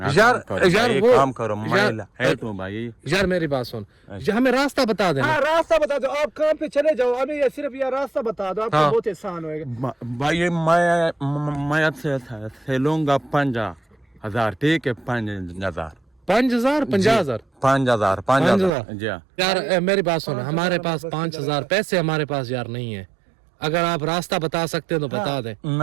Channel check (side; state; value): left; drops out; at 18.7 s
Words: यार वो काम करो, मैं हेल्प हूँ भाई। यार मेरी बात सुन, हमें रास्ता बता देना। हाँ रास्ता बता दो, आप काम पे चले जाओ, हमें ये सिर्फ ये रास्ता बता दो, आपको बहुत आसान होएगा। भाई मैं से लूंगा 5,000, ठीक है। 5,000 50,000 जी। यार मेरी बात सुन, हमारे पास 5,000 पैसे हमारे पास यार नहीं है। अगर आप रास्ता बता सकते हो तो बता दें।